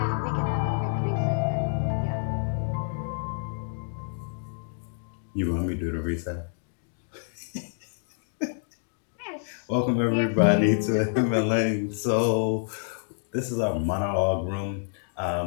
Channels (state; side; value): silent; right; digital silence